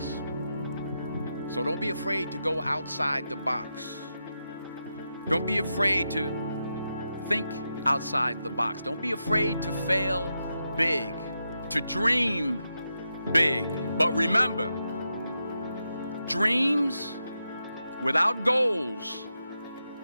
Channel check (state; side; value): inverted; both; correlation -0.87